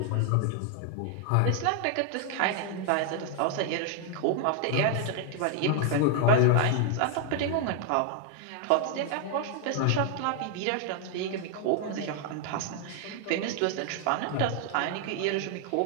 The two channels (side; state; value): both; different; correlation 0.00